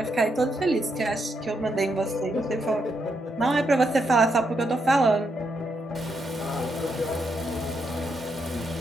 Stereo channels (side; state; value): both; normal; correlation 0.80